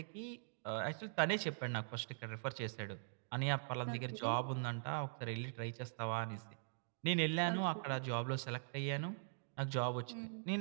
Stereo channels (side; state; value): left; silent; digital silence